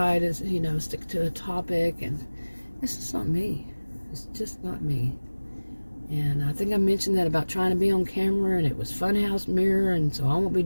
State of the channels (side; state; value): both; inverted; correlation -1.00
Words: to, you know, stick to a topic, and it's just not me. It's just not me. And I think I mentioned that about trying to be on camera, and it was Funhouse Mirror, and so I won't be